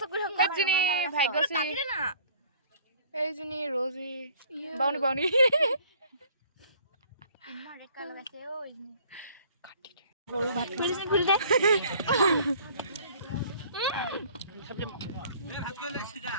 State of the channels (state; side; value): inverted; both; correlation -0.54